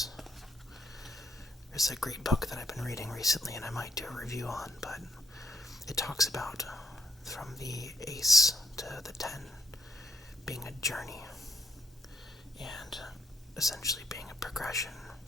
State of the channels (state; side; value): normal; both; correlation 0.71